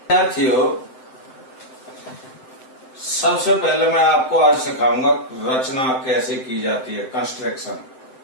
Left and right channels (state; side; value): late; right; 7.8 ms